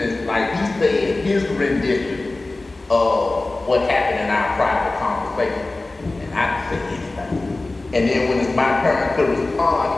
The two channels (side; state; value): right; quieter; 3.1 dB